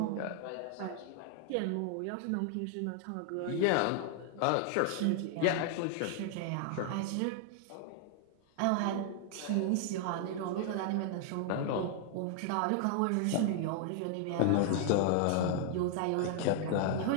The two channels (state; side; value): different; both; correlation 0.00